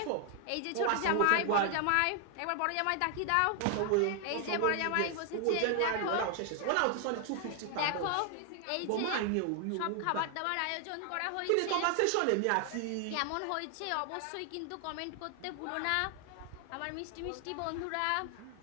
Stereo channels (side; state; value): both; different; correlation 0.00